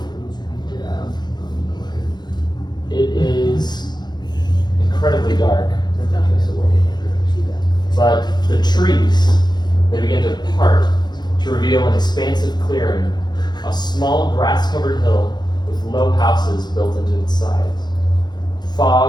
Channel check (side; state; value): right; late; 0.21 ms